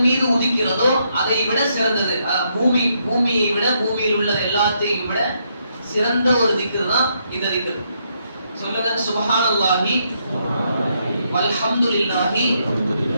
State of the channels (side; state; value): both; inverted; correlation -0.76